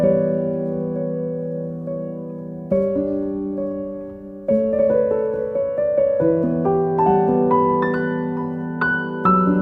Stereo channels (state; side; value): identical; both; correlation 1.00